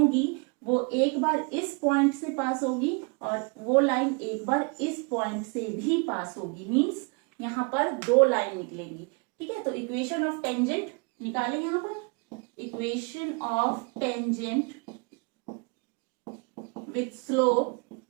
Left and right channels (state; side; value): quieter; left; 33.5 dB